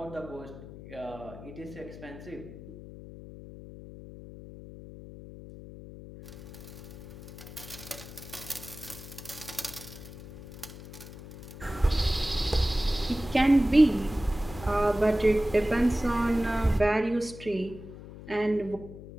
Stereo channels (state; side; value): noise; left; hum, 15 dB below the sound